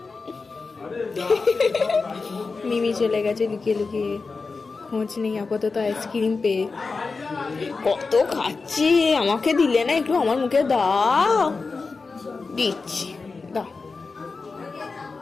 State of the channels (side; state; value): right; quieter; 4.3 dB